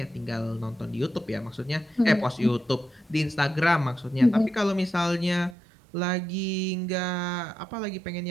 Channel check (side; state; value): left; drops out; at 5.6 s